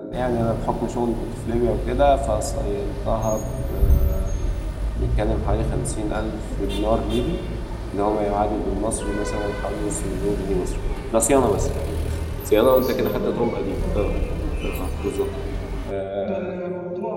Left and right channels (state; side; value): identical; both; correlation 1.00